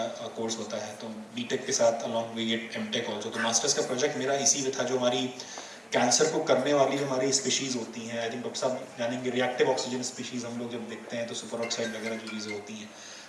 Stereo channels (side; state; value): both; identical; correlation 1.00